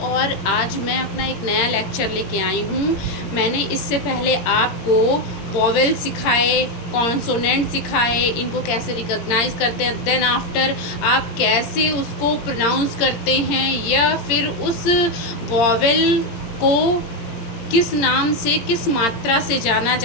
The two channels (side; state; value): right; late; 17 ms